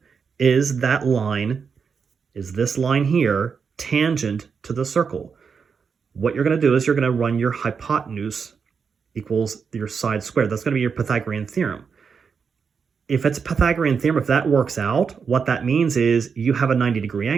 Is that line, is this line here tangent to the circle? What you're going to do is you're going to run your hypotenuse equals your side squared. That's going to be your Pythagorean theorem. If it's a Pythagorean theorem, if that works out, what that means is you have a 90-degree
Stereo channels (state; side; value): quieter; left; 6.0 dB